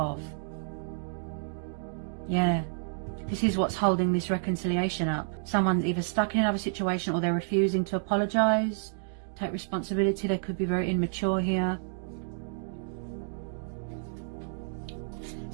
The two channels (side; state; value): left; silent; digital silence